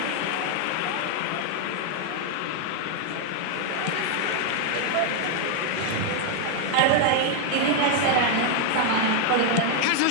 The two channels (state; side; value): different; both; correlation 0.00